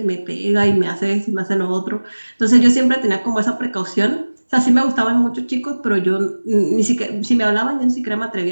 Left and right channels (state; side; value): inverted; both; correlation -1.00